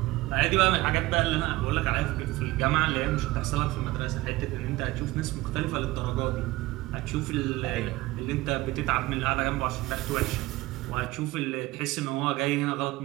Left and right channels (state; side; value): quieter; left; 19.0 dB